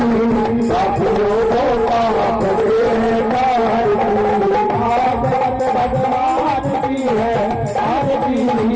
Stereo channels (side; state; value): both; identical; correlation 1.00